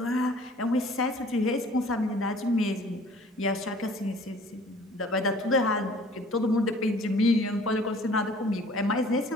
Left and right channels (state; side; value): normal; both; correlation 0.51